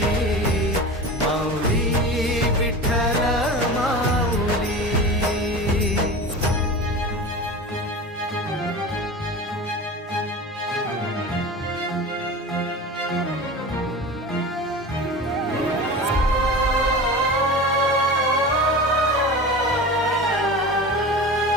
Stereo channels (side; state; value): both; normal; correlation 0.31